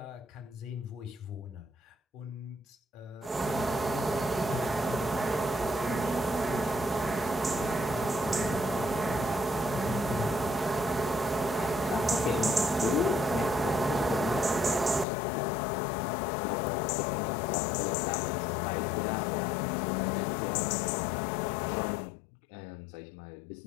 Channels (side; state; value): right; drops out; at 15.1 s